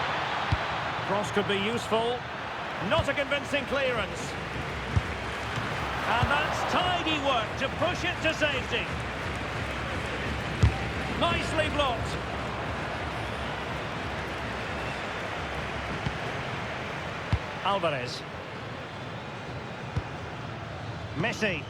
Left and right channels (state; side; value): identical; both; correlation 1.00